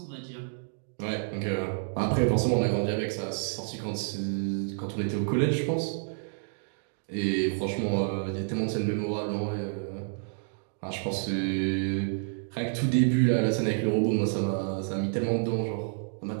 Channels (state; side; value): silent; left; digital silence